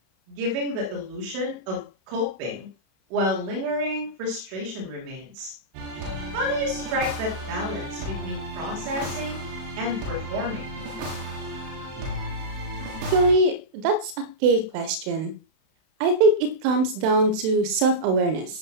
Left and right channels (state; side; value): late; left; 31 ms